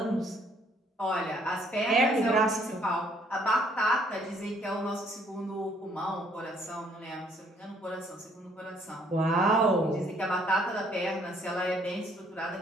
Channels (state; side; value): normal; both; correlation 0.64